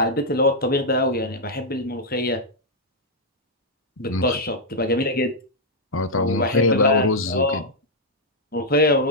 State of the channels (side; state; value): both; normal; correlation -0.05